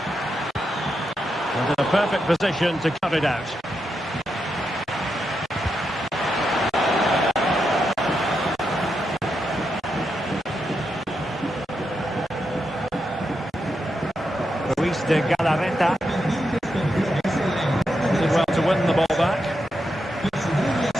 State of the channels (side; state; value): both; normal; correlation 0.85